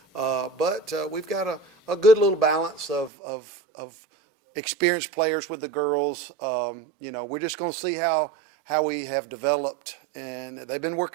But we've got a good little balance of experienced players with the girls. We're just going to see how we have developed, and they've been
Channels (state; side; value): drops out; left; at 3.1 s